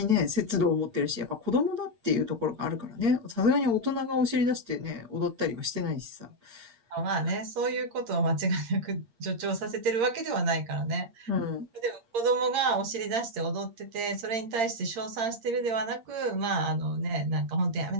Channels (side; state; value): left; late; 8.7 ms